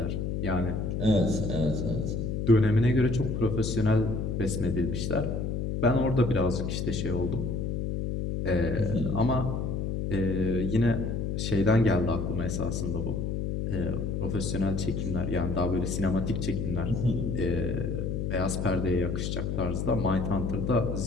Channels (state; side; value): noise; left; hum, 1 dB below the sound